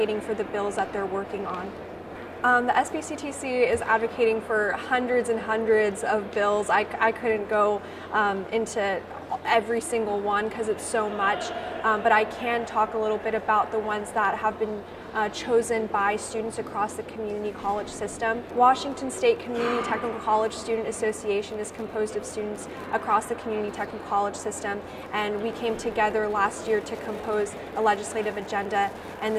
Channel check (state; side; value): identical; both; correlation 1.00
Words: for the bills that they're working on. The SBCTC is advocating for hundreds and hundreds of bills. I couldn't go into every single one because it's so much, but I can talk a little bit about the ones that have been chosen by students across the community college system. Washington State Community Technical College Student Association is composed of students across the community technical college system, and we came together last year to compose a legislative agenda, and